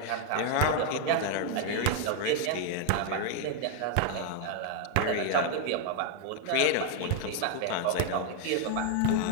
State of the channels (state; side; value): different; both; correlation 0.00